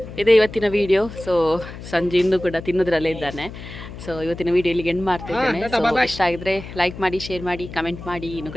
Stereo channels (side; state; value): left; noise; hum, 12 dB below the sound